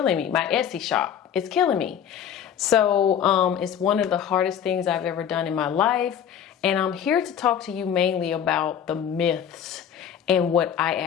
me. My Etsy shop. It's killing me. So it's one of the hardest things I've ever done in my life. And I'm here to talk to you mainly about the myths and what I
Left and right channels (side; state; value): right; quieter; 8.9 dB